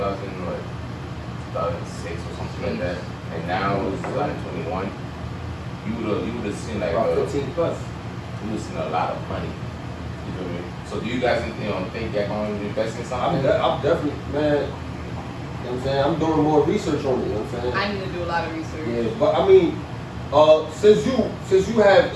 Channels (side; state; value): both; identical; correlation 1.00